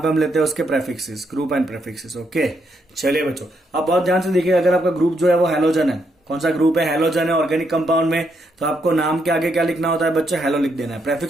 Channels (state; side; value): normal; both; correlation 0.77